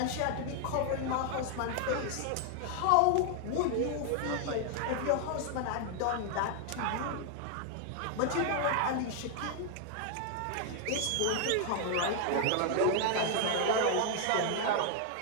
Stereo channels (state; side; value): different; both; correlation 0.00